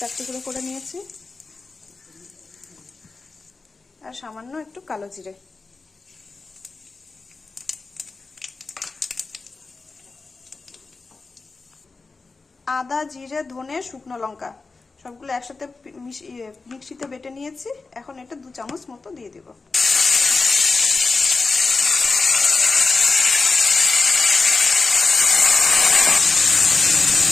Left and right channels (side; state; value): right; quieter; 4.0 dB